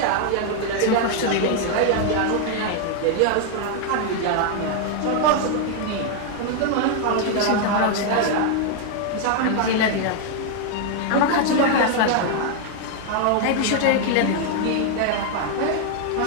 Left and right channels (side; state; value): both; different; correlation 0.00